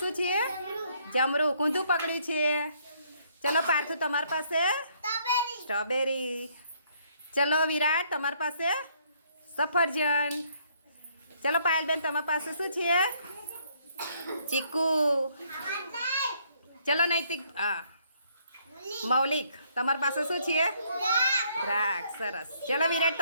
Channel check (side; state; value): both; inverted; correlation -0.68